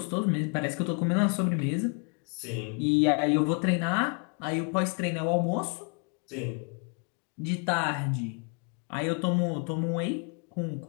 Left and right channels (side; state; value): right; quieter; 39.6 dB